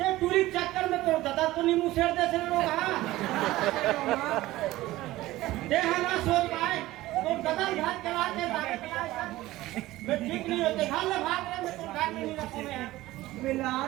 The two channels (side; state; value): left; quieter; 17.0 dB